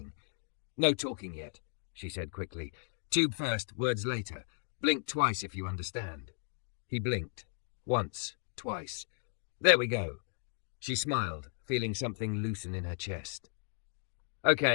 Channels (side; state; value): right; silent; 54 dB below the other